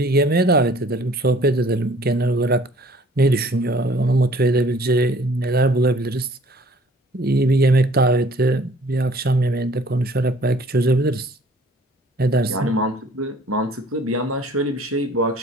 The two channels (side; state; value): both; normal; correlation 0.54